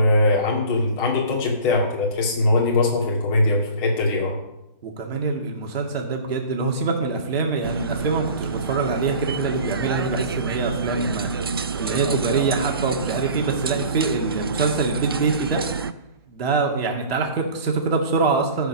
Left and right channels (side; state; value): both; inverted; correlation -0.41